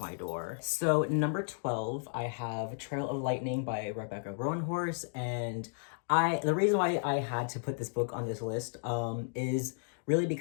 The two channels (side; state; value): right; silent; digital silence